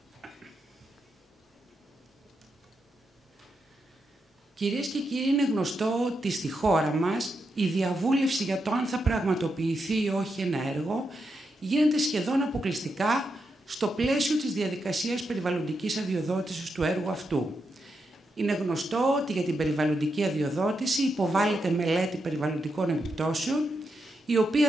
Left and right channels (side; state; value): both; normal; correlation 0.84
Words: Κυρίες και κύριοι, είναι γνωστό ότι στη χώρα μας η διαβούλευση για το αν θα πραγματοποιηθεί ή όχι ένα έργο γίνεται σχεδόν αποκλειστικά στο πλαίσιο της διαδικασίας περιβαλλοντικής αδειοδότησης του έργου αυτού. Είναι γνωστό ότι για την περιβαλλοντική αδειοδότηση υποβάλλεται μελέτη περιβαλλοντικών επιπτώσεων, η